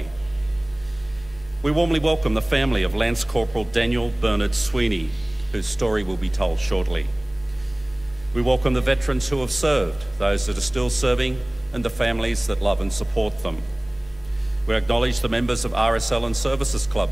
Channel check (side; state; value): left; noise; hum, 22 dB below the sound